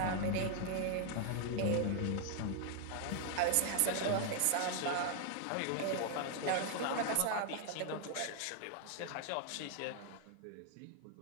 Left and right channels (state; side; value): different; both; correlation 0.00